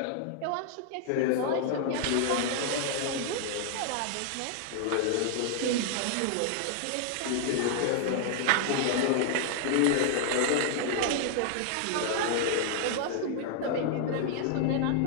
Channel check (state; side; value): different; both; correlation 0.00